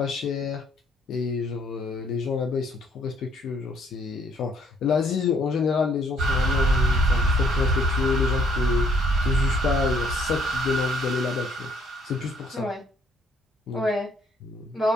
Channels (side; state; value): both; normal; correlation 0.65